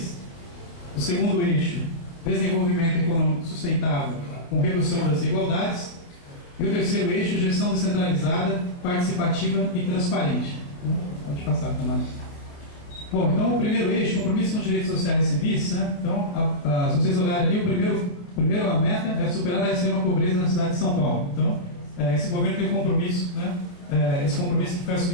O segundo eixo, desenvolvimento econômico sustentável com redução das desigualdades. E o terceiro eixo, gestão descentralizada, participativa e transparente. Pode passar, Tamara. Bom, então o primeiro eixo, compromisso com os direitos sociais e civis, né? Então, se vocês olharem ali, a primeira meta é superar a extrema pobreza na cidade de São Paulo. Então, esse governo tem um compromisso, né? Esse compromisso que foi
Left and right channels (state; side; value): late; right; 29 ms